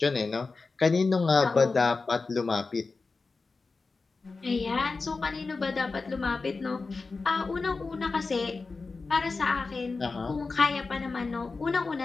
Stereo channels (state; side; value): quieter; right; 4.1 dB